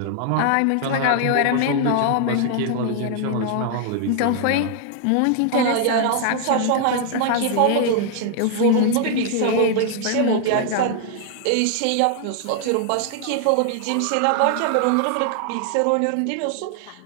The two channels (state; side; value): different; both; correlation 0.00